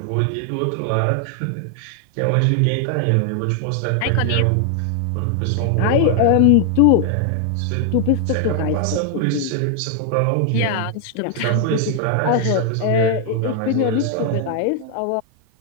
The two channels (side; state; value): both; different; correlation 0.00